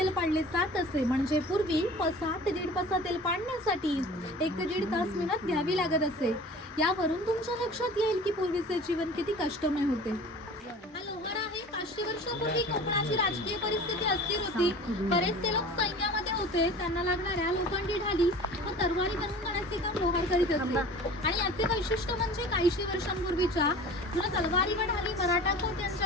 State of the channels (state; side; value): normal; both; correlation 0.41